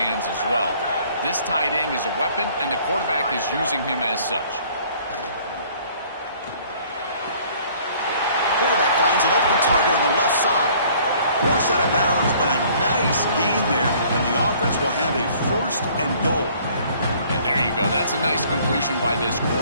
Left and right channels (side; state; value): both; inverted; correlation -0.56